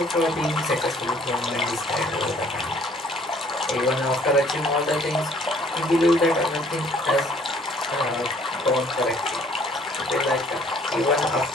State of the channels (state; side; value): normal; both; correlation 0.59